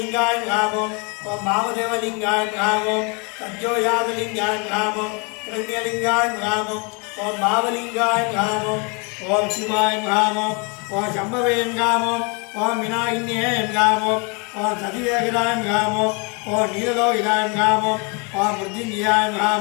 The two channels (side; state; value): right; quieter; 32.9 dB